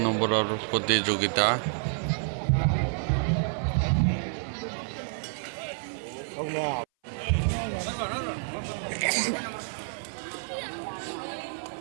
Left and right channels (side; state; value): left; silent; 57 dB below the other